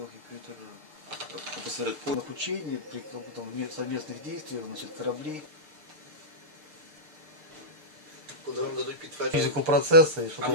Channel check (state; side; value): late; left; 6.6 ms